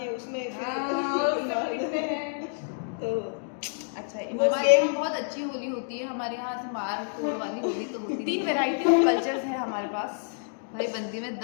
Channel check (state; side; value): silent; right; digital silence